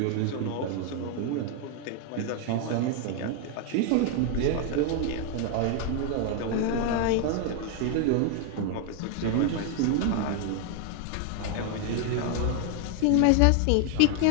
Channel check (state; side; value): different; both; correlation 0.01